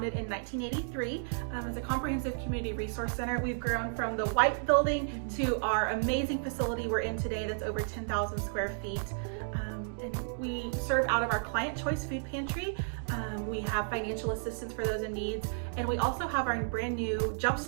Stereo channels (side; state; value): left; silent; digital silence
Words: in 1983 as a comprehensive community resource center. We've grown from the white building to our amazing facility we're in today that's over 10,000 square feet. And we serve out of our Client Choice Food Pantry. We have financial assistance for those in needs. And we also have our brand new